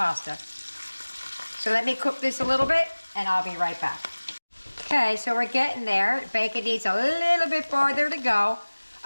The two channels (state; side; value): inverted; both; correlation -1.00